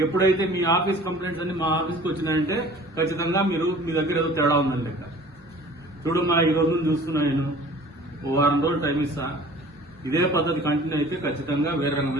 ఎప్పుడైతే మీ ఆఫీస్ కంప్లైంట్స్ అన్ని మా ఆఫీస్కి వచ్చినాయంటే ఖచ్చితంగా మీరు మీ దగ్గర ఏదో తేడా ఉందని లెక్క. చూడమ్మా, ఈ రోజు చూస్తున్నా నేను ఓ వారం రోజులు టైం ఇస్తా. ఇదే పద్ధతి కంటిన్యూ అయితే ఖచ్చితంగా వేరే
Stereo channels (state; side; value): normal; both; correlation 0.47